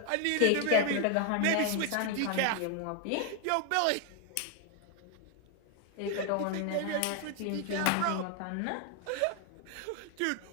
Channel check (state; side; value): different; both; correlation 0.01